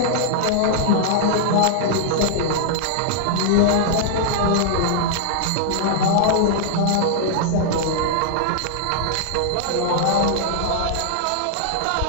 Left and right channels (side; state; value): both; different; correlation -0.01